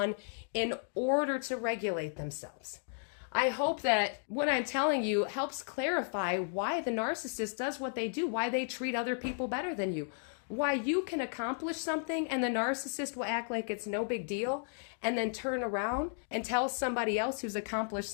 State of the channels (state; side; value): silent; right; digital silence